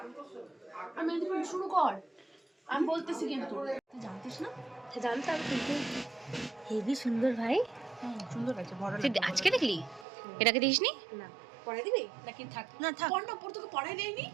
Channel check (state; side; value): drops out; left; at 10.1 s